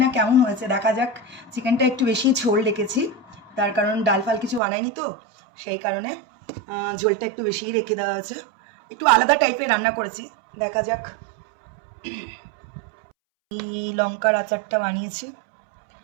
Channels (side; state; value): left; drops out; at 4.6 s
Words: না কেমন হয়েছে, দেখা যাক। চিকেনটা একটু বেশি ঝোল রেখেছি, তার কারণ ডাল ফাল কিছু বানাইনি তো, সেই কারণে ঝোলটা একটু বেশিই রেখে দেওয়া হয়েছে। একটু আলাদা টাইপের রান্না করেছি, দেখা যাক। এই লঙ্কার আচারটা বানিয়েছি,